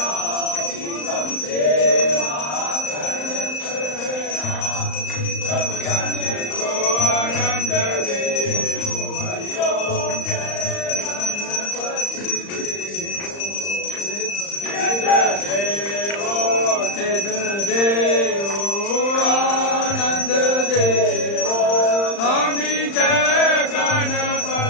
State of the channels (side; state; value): right; late; 35 ms